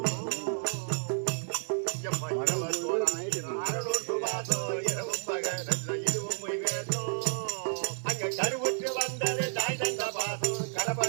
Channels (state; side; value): silent; left; digital silence